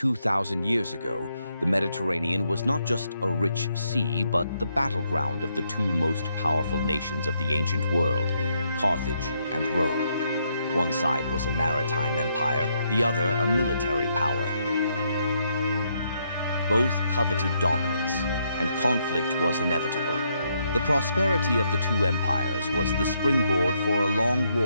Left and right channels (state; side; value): inverted; both; correlation -0.76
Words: years ago, the Mediterranean was not just a rich sea, but the battleground of the two most powerful nations of the ancient world, Carthage and Rome. One side was a maritime empire, the other a military power. Both coveted dominance, and conflict was inevitable. The prosperity of the two empires was the springboard for a long